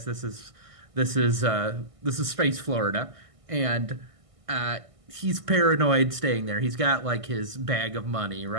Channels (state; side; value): late; left; 1.6 ms